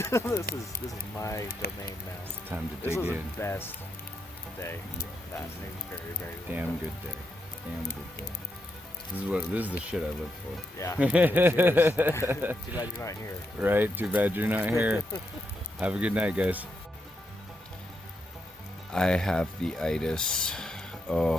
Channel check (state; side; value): normal; both; correlation 0.81